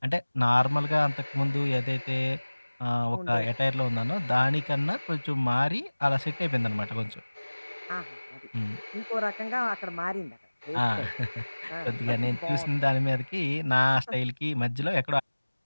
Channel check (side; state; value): both; inverted; correlation -1.00